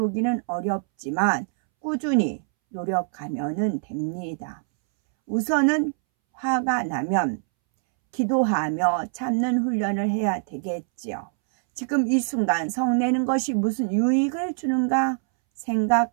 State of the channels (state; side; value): silent; left; 62 dB below the other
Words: 어렵지만 꾸준히 노력하면 됩니다. 우선은 화가 나면 기도하며 참는 훈련을 해야 되겠지요. 지금 이 순간 성내는 것이 무슨 유익을 주는가